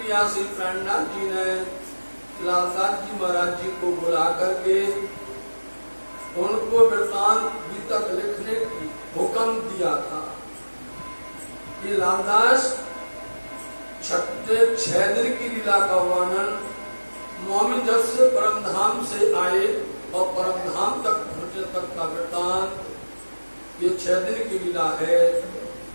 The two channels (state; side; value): inverted; both; correlation -1.00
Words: श्री प्रणनाथ जी ने लालदास जी महाराज जी को बुला करके उनको वृत्तांत गीतक लिखने की हुक्म दिया था कि लालदास 6 दिन की लीला का वर्णन मोमिन जब से परम धाम से आए और परम धाम तक पहुंचे तक का वृत्तांत ये 6 दिन की लीला है,